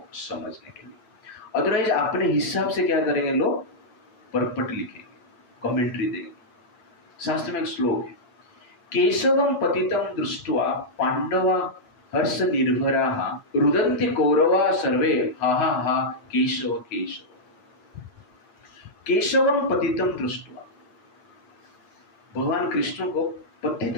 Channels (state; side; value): late; right; 9.4 ms